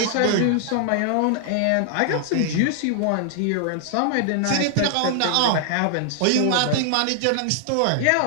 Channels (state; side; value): different; both; correlation 0.00